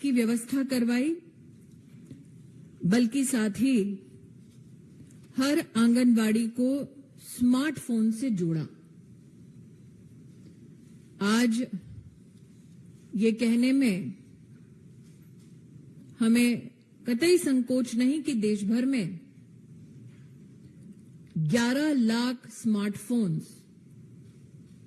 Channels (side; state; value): both; identical; correlation 1.00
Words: व्यवस्था करवाई, बल्कि साथ ही हर आंगनवाड़ी को स्मार्टफोन से जोड़ा। आज ये कहने में हमें कतई संकोच नहीं कि देश भर में 11 लाख स्मार्टफोन्स